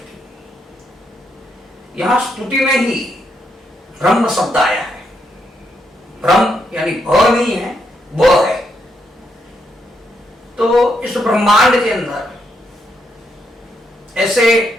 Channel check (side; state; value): both; normal; correlation 0.78